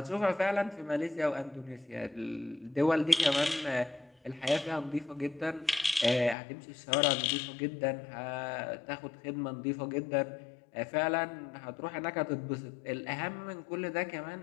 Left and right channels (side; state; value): right; drops out; at 6.4 s